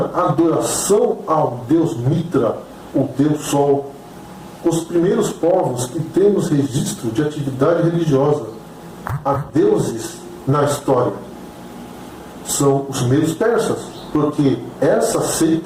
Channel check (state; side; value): identical; both; correlation 1.00